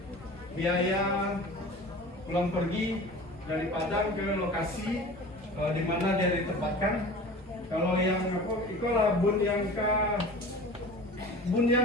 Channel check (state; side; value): normal; both; correlation 0.38